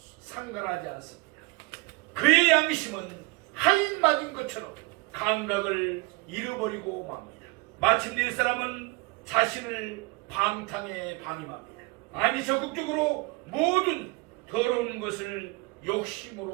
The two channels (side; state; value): left; quieter; 25.8 dB